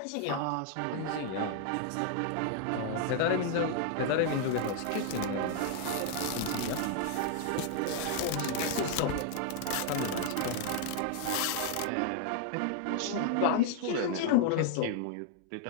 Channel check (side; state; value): both; different; correlation 0.00